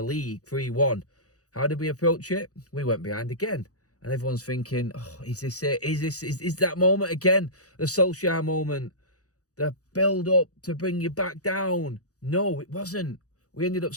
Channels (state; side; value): late; right; 0.67 ms